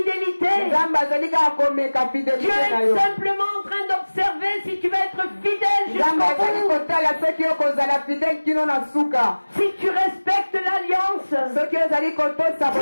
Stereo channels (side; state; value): both; inverted; correlation -1.00